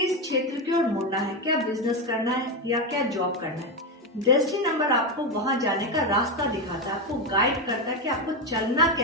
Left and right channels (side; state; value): both; normal; correlation 0.11